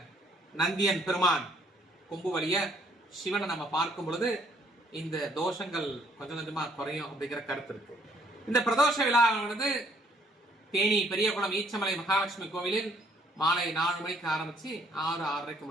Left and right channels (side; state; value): both; normal; correlation 0.65